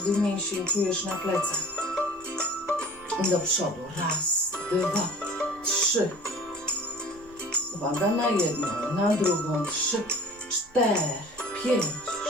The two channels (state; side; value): normal; both; correlation 0.44